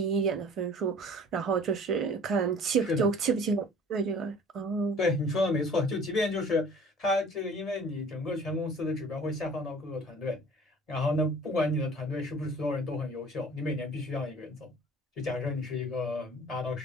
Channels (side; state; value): both; normal; correlation 0.48